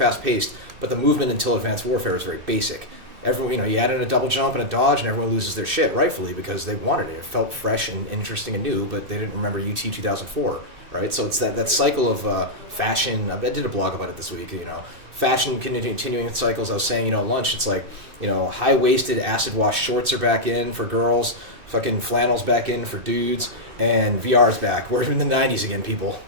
but the movement until Advanced Warfare is very basic. Everyone, you know, you add in a double jump and a dodge, and everyone loses their shit, rightfully, because they wanted it. It felt fresh and interesting and new, but they didn't remember UT 2004, right? So it's that cycle of fashion. I did a blog about it this week. You know, fashion continuing cycles. I was saying, you know, at lunch, it's like, you know, high-waisted acid wash shorts are back in for girls, fucking flannels back in for dudes, and VR's back. We're in the 90s again, people.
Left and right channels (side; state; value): left; late; 2.6 ms